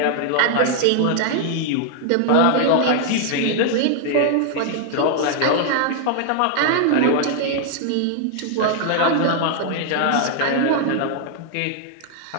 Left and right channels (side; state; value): both; different; correlation 0.00